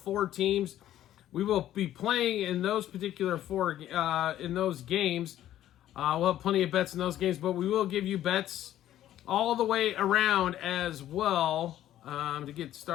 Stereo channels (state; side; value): quieter; right; 12.5 dB